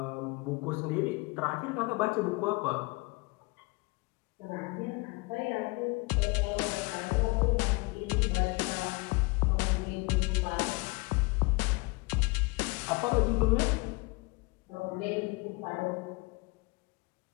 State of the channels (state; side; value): quieter; right; 27.1 dB